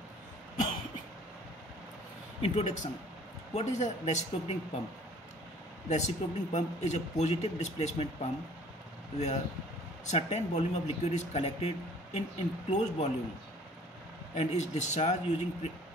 Introduction. What is a reciprocating pump? Reciprocating pump is a positive displacement pump where certain volume of liquid is collected in enclosed volume and is discharged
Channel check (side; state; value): both; normal; correlation 0.53